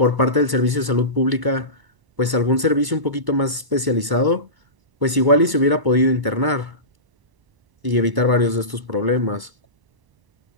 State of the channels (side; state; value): left; late; 1.0 ms